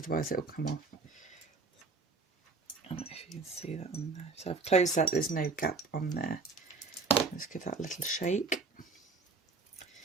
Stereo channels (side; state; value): left; quieter; 4.2 dB